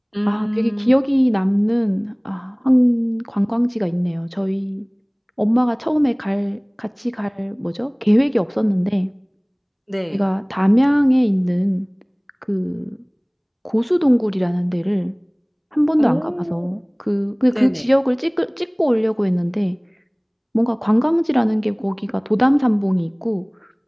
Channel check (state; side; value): identical; both; correlation 1.00